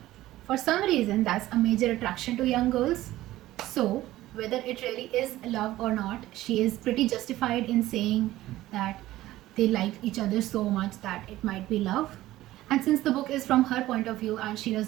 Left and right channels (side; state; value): left; quieter; 15.7 dB